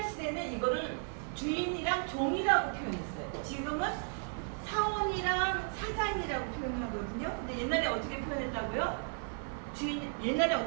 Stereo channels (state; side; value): silent; left; 55 dB below the other